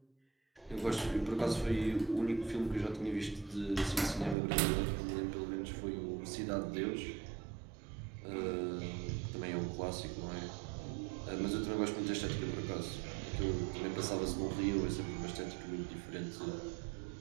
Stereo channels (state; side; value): drops out; left; at 4.4 s